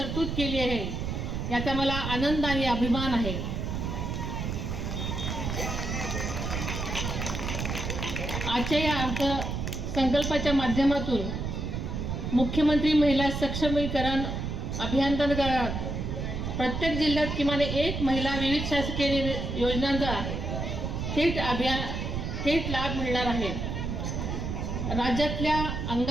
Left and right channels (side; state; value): right; noise; rumble, 3 dB below the sound